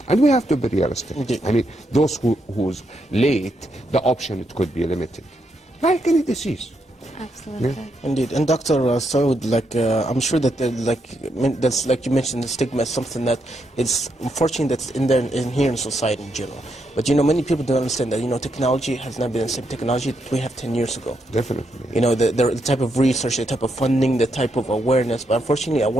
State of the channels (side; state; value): both; normal; correlation 0.79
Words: And we have to be realistic. Indeed. I mean, those who's late, the option, it could be limited, like any disease. Absolutely. Yeah. Indeed, and Dr. Saud, I'm sure that that's like you mentioned, the stigma is something that is unfortunate that's in here in society in general. But you know, many people don't understand that, you know, technology has not been the same technology that we have 10 years ago. Definitely. You know, the type of research, the type of funding, the type of awareness. But unfortunately,